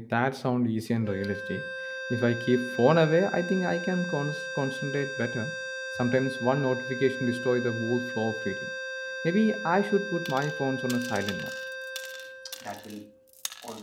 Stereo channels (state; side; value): identical; both; correlation 1.00